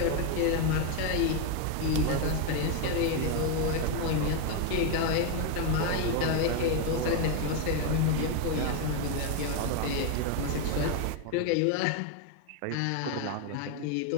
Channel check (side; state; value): both; different; correlation 0.01